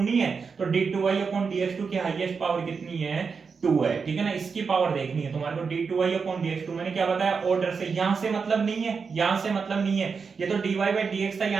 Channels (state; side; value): quieter; left; 5.4 dB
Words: है, तो d2y अपॉन dx2 की हाईएस्ट पावर कितनी है, 2 है, ठीक है ना। इसकी पावर देखनी है तुम्हारे को, d2y अपॉन dx2, मैंने क्या बताया ऑर्डर से, यहां से मतलब नहीं है, यहां से मतलब नहीं है, ये तो dy बाय dx था,